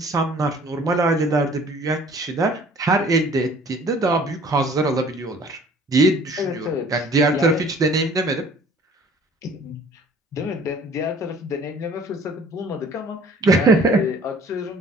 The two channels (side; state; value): both; normal; correlation 0.52